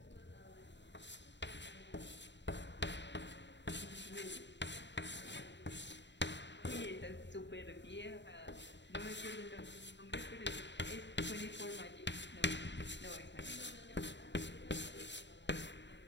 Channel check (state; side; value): late; right; 0.52 ms